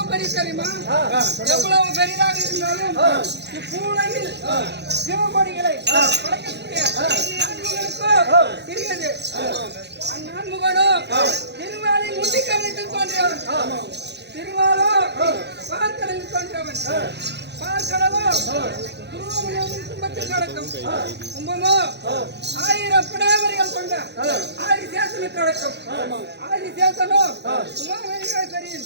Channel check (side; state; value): left; late; 0.50 ms